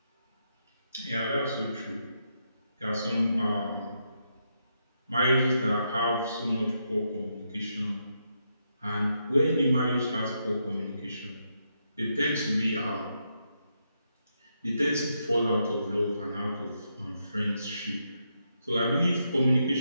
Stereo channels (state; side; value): inverted; both; correlation -0.81